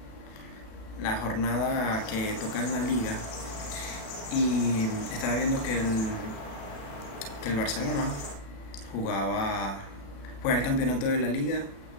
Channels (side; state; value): right; late; 36 ms